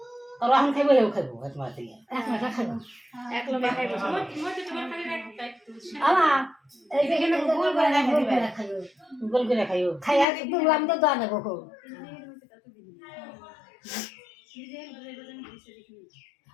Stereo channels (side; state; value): right; drops out; at 10.2 s